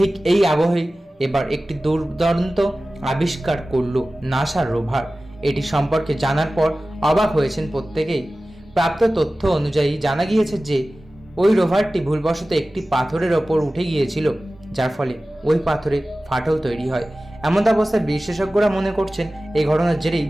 এই আবহেই এবার একটি দুর্দান্ত আবিষ্কার করল নাসার রোভার। এটি সম্পর্কে জানার পর অবাক হয়েছেন প্রত্যেকেই। প্রাপ্ত তথ্য অনুযায়ী জানা গিয়েছে যে ওই রোভারটি ভুলবশত একটি পাথরের ওপর উঠে গিয়েছিল, যার ফলে ওই পাথরে ফাটল তৈরি হয়। এমন অবস্থায় বিশেষজ্ঞরা মনে করছেন এই ঘটনার জেরেই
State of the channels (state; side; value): normal; both; correlation 0.96